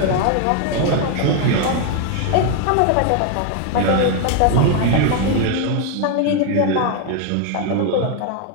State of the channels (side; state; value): both; different; correlation 0.00